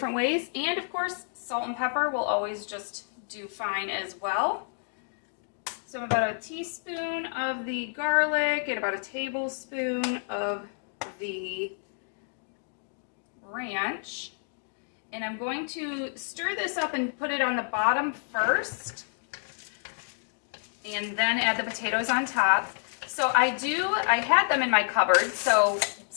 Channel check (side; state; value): right; silent; digital silence